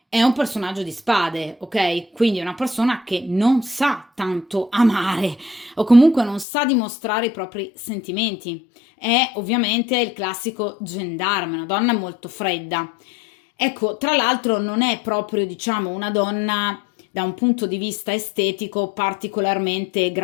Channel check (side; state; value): right; drops out; at 6.5 s